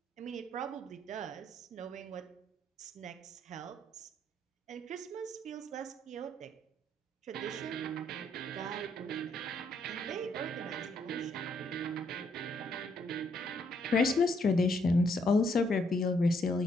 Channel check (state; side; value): normal; both; correlation 0.72